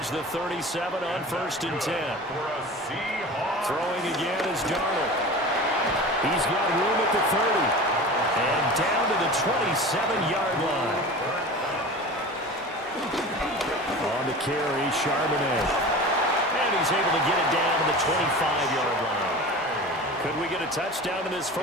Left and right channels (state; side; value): normal; both; correlation 0.34